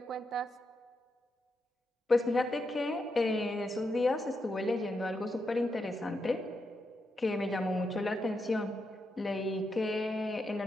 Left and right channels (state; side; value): normal; both; correlation 0.84